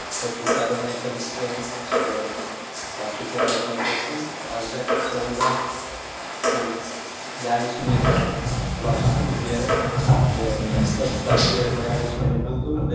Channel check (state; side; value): identical; both; correlation 1.00